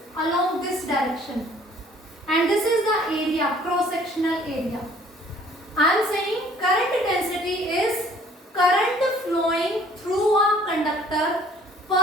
along this direction, and this is the area, cross-sectional area. I am saying current density is current flowing through a conductor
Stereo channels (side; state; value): both; normal; correlation 0.56